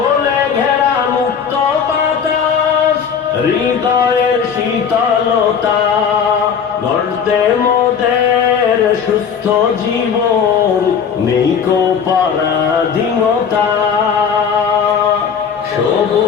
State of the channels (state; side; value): quieter; right; 6.9 dB